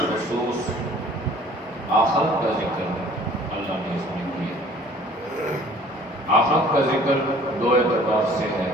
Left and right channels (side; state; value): both; normal; correlation 0.52